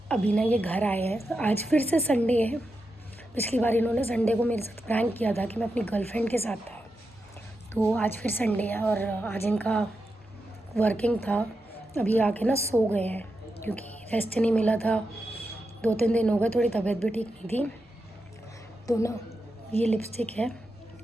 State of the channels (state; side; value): normal; both; correlation 0.87